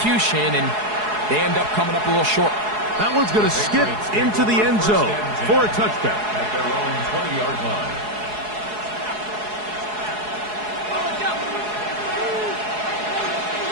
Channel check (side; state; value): left; late; 4.7 ms